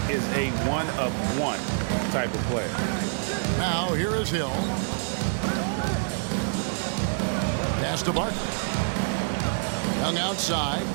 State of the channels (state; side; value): silent; left; digital silence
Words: is a one-of-one type of player. Now here is Hill. Pass to Barkley. Young outside.